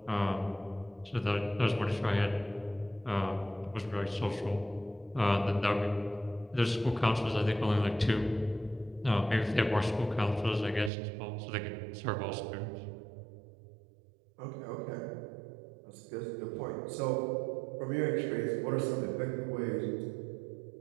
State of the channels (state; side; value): drops out; left; at 10.9 s